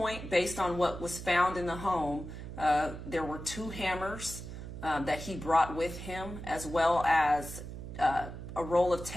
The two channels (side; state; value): right; noise; hum, 10 dB below the sound